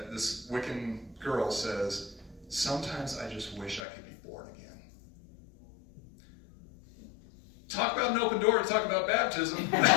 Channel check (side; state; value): right; drops out; at 3.8 s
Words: Wiccan girl says, sometimes I just wish I could be born again. Talk about an open door to talk about baptism.